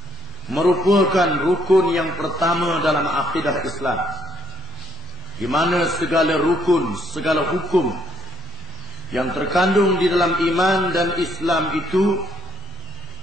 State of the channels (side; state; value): both; normal; correlation 0.69